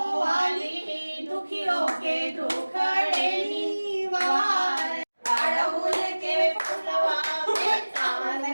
वाली, दुखियों के दुख हरेली वार। अड़हुल के फुलवा में कान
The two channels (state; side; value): inverted; both; correlation -1.00